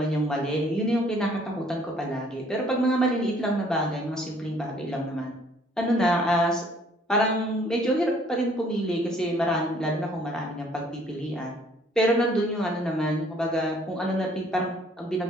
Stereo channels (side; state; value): both; normal; correlation 0.60